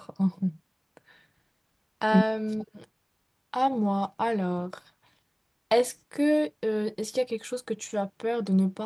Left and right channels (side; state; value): both; identical; correlation 1.00